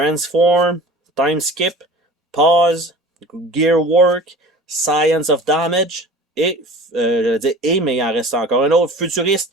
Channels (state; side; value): normal; both; correlation 0.41